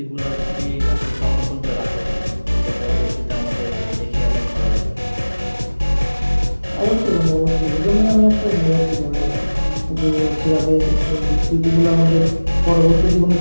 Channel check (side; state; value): both; inverted; correlation -1.00